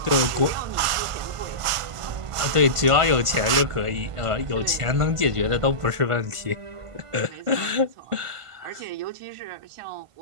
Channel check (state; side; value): late; left; 1.5 ms